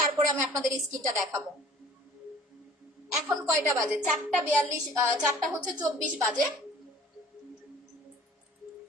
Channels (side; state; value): both; normal; correlation 0.49